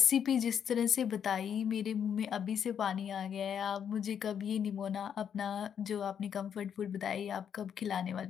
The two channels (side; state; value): right; quieter; 8.2 dB